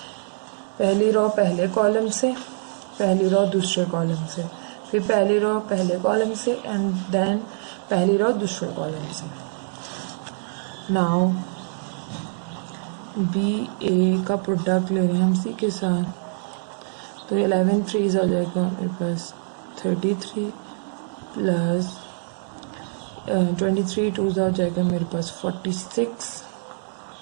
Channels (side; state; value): left; silent; 62 dB below the other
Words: पहली रो पहले कॉलम से, पहली रो दूसरे कॉलम से, फिर पहली रो पहले कॉलम से एंड देन पहली रो दूसरे कॉलम से। नाउ बी ए का प्रोडक्ट ले रहे हैं हम सी के साथ, तो 11 3 हो जाएगा मेरे पास 33 प्लस 23 2 हो जाएगा मेरे पास 46,